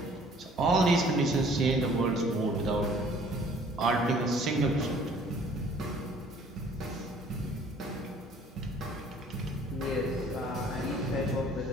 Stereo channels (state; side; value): normal; both; correlation 0.55